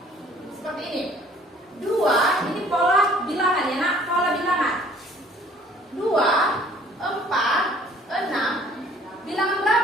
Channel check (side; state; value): both; normal; correlation 0.56